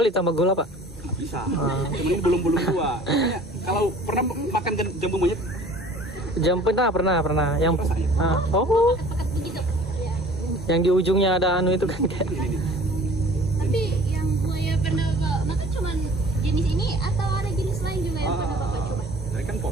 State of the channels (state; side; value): normal; both; correlation 0.48